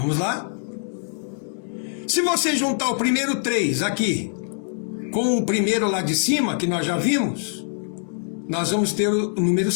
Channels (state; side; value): silent; right; digital silence